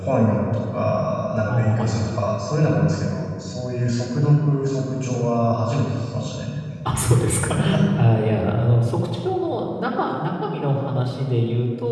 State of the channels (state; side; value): identical; both; correlation 1.00